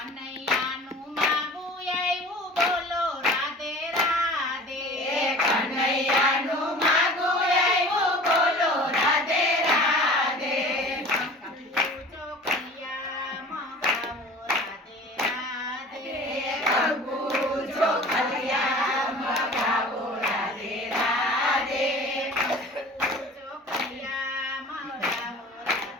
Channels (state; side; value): normal; both; correlation 0.42